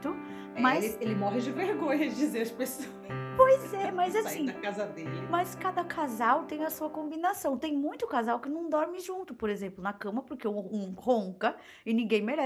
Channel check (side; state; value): both; identical; correlation 1.00